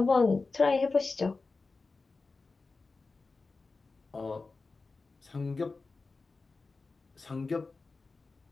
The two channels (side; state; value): right; quieter; 3.9 dB